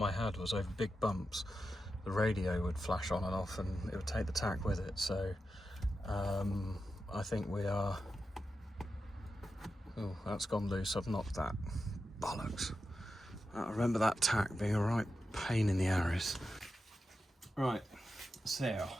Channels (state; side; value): normal; both; correlation 0.90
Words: I had was over big bumps. The radio would flash on and off and it would take the tack with it. So I think we are... Oh, that's gone loose. I've knocked that. Bollocks. I remember that tack being a right pain in the arse. Right, so